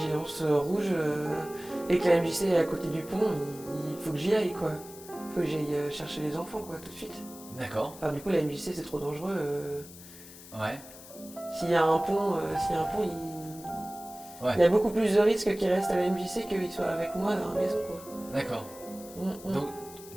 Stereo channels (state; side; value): noise; left; hiss, 17 dB below the sound